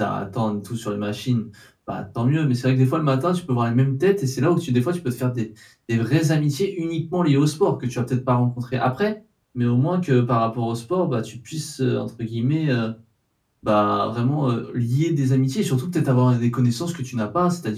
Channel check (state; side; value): identical; both; correlation 1.00